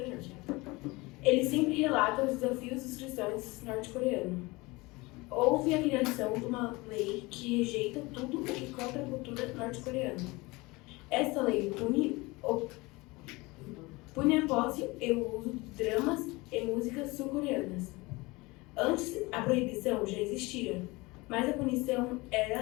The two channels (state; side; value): quieter; right; 23.4 dB